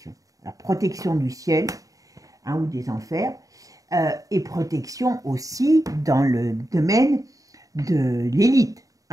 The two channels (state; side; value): late; left; 0.17 ms